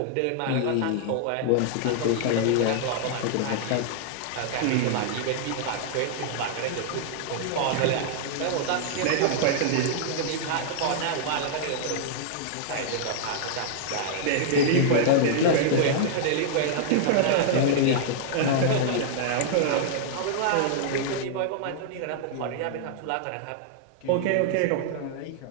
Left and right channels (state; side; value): different; both; correlation -0.01